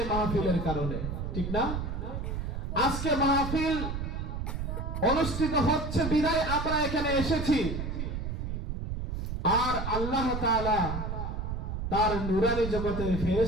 মাহফিলের কারণে, ঠিক না? আজকে মাহফিল অনুষ্ঠিত হচ্ছে বিদায় আমরা এখানে এসেছি, আর আল্লাহ তাআলা তার নূরানি জগতের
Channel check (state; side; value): noise; right; rumble, 4 dB below the sound